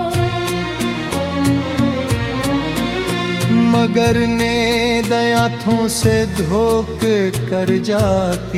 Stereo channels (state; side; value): identical; both; correlation 1.00